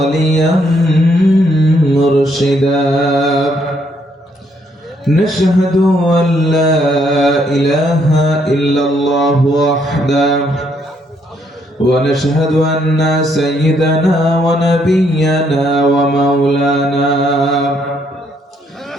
মুরশিদা। نشهد أن لا إله إلا الله وحده ونشهد أن سيدنا ونبينا ومولانا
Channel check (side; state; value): both; normal; correlation 0.71